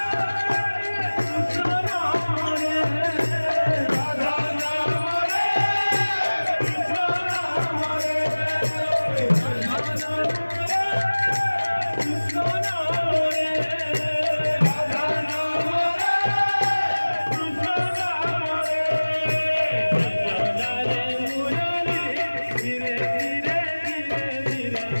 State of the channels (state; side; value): inverted; both; correlation -1.00